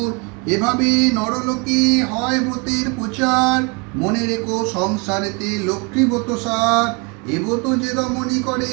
এভাবে নরলোকে হয় ব্রতের প্রচার, মনে রেখো সংসারেতে লক্ষ্মী ব্রত সার। এ ব্রত যে রমণী করে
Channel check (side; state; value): left; quieter; 30.9 dB